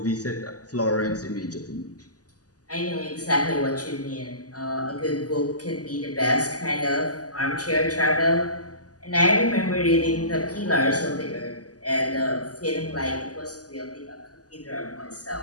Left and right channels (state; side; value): late; right; 0.67 ms